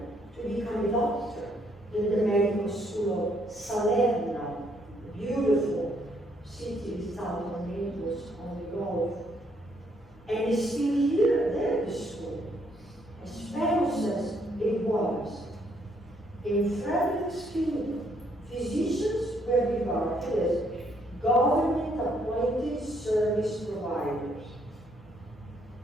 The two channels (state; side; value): normal; both; correlation 0.70